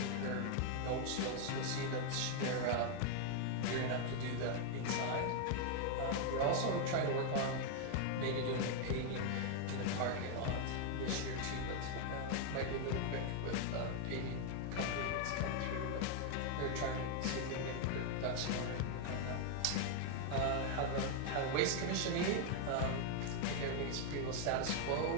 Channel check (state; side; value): different; both; correlation 0.00